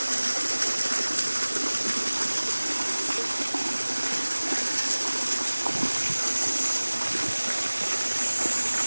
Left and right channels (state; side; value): inverted; both; correlation -1.00